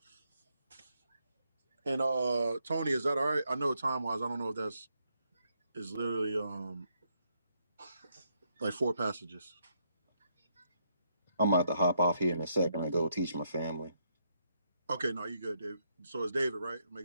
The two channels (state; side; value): inverted; both; correlation -0.76